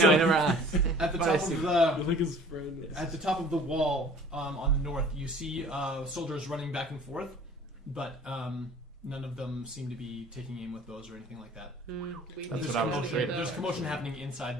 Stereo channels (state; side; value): normal; both; correlation 0.49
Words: I never asked. At the But top I see. of I the think his friend. At the top of the wall on the north, you see soldiers running back and forth, but none of them seem to be taking aim with bows or anything like that. That's what I was afraid of. There's commotion happening